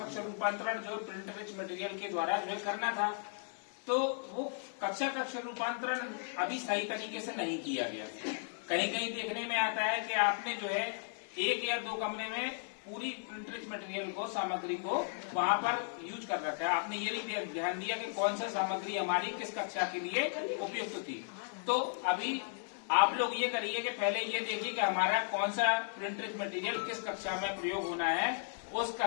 रूपांतरण जो प्रिंट रिच मटेरियल के द्वारा जो है करना था, तो वो कक्षा कक्ष रूपांतरण अभी सही तरीके से नहीं किया गया। कहीं कहीं देखने में आता है कि आपने जो है एक या दो कमरे में पूरी प्रिंट रिच मटेरियल को सामग्री को वहां पर यूज कर रखा है। आपने ये नहीं ध्यान दिया कि कौन सा सामग्री हमारी किस कक्षा के लिए उपयुक्त थी। तो अभी आप लोग ये करिए कि पहले ये देखिए कि हमारा कौन सा प्रिंट रिच मटेरियल किस कक्षा में प्रयोग होना है, उस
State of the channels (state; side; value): silent; right; digital silence